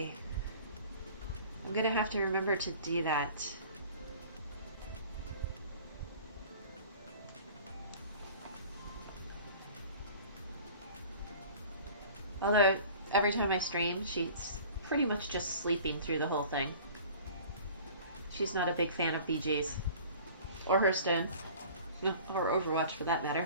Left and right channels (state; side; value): inverted; both; correlation -0.45